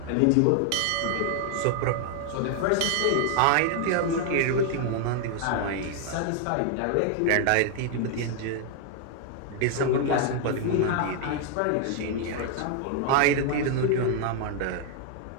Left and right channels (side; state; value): both; different; correlation 0.00